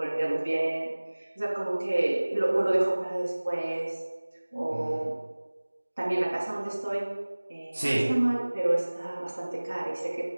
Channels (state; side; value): inverted; both; correlation -1.00